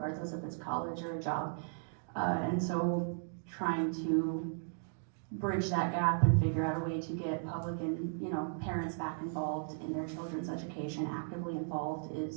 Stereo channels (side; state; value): left; silent; digital silence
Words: if it's college or a job. And so trying to bridge that gap and figure out a way to get public and parents back involved in their children's education, actively involved,